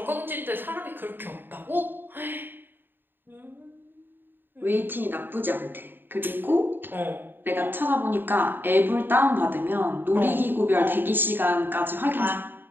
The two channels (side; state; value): left; late; 0.096 ms